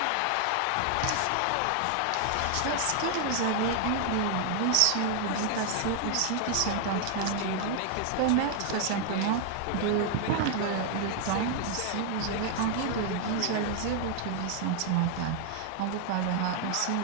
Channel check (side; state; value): both; different; correlation 0.00